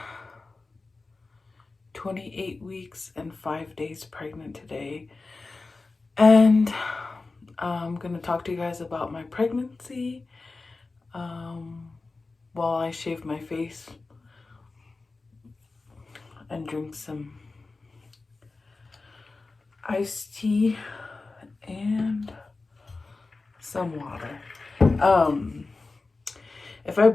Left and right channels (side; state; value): right; quieter; 3.7 dB